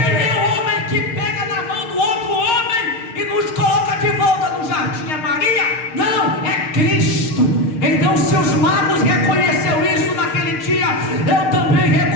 o homem que pega na mão do outro homem e nos coloca de volta no jardim? É Maria? Não, é Cristo. Então, se os magos reconheceram isso naquele dia, eu também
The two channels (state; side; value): late; right; 6.5 ms